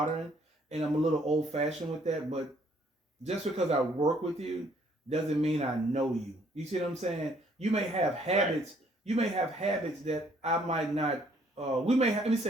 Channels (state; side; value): normal; both; correlation 0.64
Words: and I'm a little old fashioned with that. But just because I work with you doesn't mean I know you. You see what I'm saying? You may have habits. You may have habits that I might not. Let me